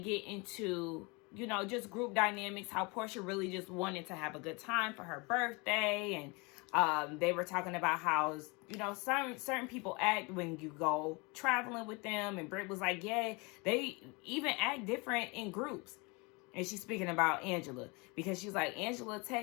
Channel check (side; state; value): right; quieter; 28.2 dB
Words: into, just group dynamics, how Portia really just wanted to have a good time for her birthday. And they were talking about how, certain people act when you go traveling with them. And Britt was like, yeah, they even act different in groups. And she's speaking about Angela, because she's like, Angela